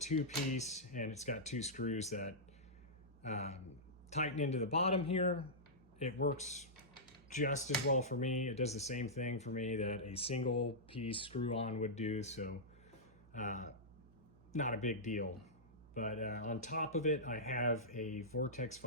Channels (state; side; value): noise; right; hum, 23 dB below the sound